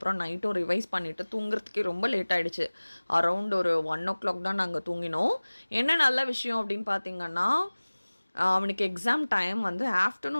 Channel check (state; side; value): inverted; both; correlation -1.00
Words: நைட்டும் ரிவைஸ் பண்ணிவிட்டு தூங்குறதுக்கே ரொம்ப லேட் ஆகிடுச்சு. அரவுண்ட் ஒரு 1 o'clock தான் நாங்கள் தூங்கினோம். என்ன நல்ல விஷயம் அப்படின்னு பார்த்தீங்கன்னா, அவனுக்கு எக்ஸாம் டைம் வந்து